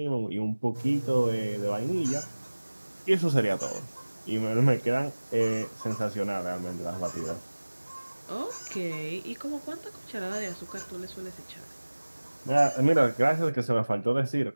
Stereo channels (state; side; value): inverted; both; correlation -1.00